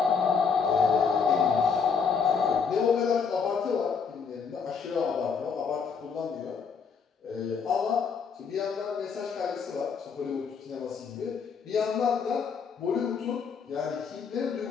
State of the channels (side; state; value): right; quieter; 6.0 dB